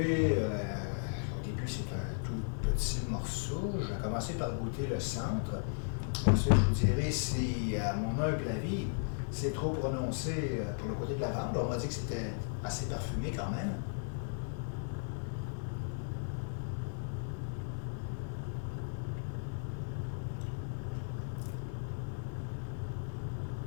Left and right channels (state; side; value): silent; right; digital silence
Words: au début c'est un tout petit morceau, je vais commencer par goûter le centre. Ensuite, je vous dirai si, à mon humble avis, c'est trop prononcé pour le côté de lavande. On m'a dit que c'était assez parfumé quand même.